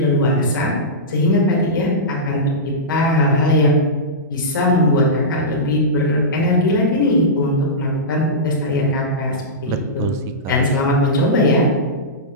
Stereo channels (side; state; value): both; normal; correlation -0.16